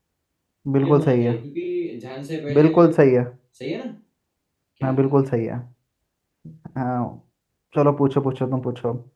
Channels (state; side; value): identical; both; correlation 1.00